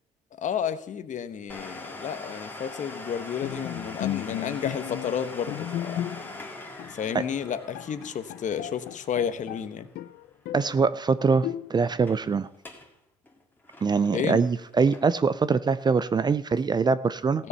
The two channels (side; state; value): both; normal; correlation 0.61